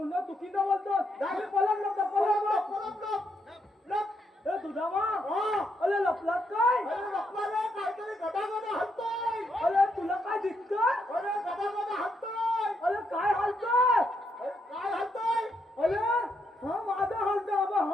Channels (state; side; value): normal; both; correlation 0.78